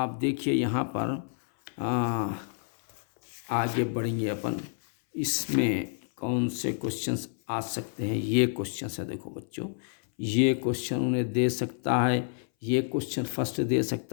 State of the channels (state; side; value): silent; right; 59 dB below the other